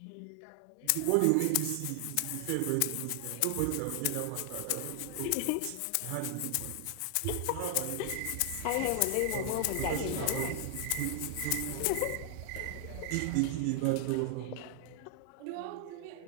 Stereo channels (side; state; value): both; different; correlation 0.00